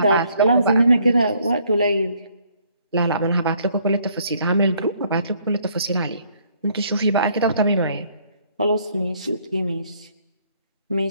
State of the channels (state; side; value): inverted; both; correlation -0.65